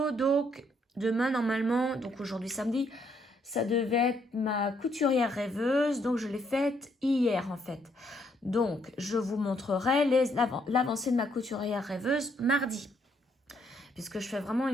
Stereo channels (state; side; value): normal; both; correlation 0.72